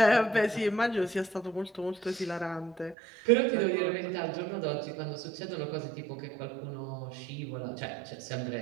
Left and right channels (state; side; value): drops out; left; at 3.0 s